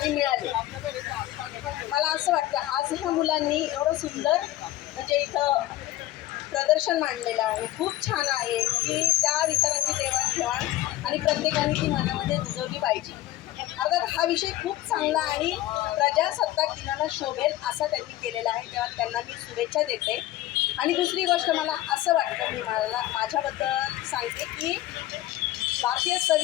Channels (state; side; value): quieter; right; 15.3 dB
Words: मिळाले. मला असं वाटतं आज ह्या मुलांनी एवढं सुंदर म्हणजे इथं प्रदर्शन मांडलेलं आहे. खूप छान आहे की त्या विचारांची देवाणघेवाण आणि प्रत्येकाने ती मनामध्ये रुजवली पाहिजे. अर्थात हा विषय खूप चांगला आणि प्रजासत्ताक दिनाला शोभेल असा त्यांनी केलेला आहे. तेव्हा त्यांना मी शुभेच्छा देते. आणि दुसरी गोष्ट मला असं वाटतं, मी माझ्याबद्दल सांगते की भारतीय